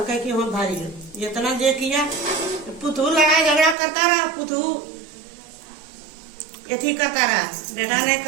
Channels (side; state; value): left; drops out; at 3.8 s